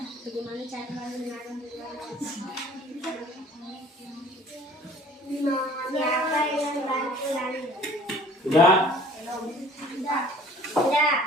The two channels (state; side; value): normal; both; correlation 0.50